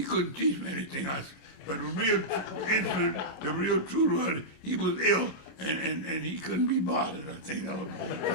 couldn't teach me anything. But the real incident, the real truth was he was ill, and he couldn't be bothered. I think that was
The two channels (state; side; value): late; right; 27 ms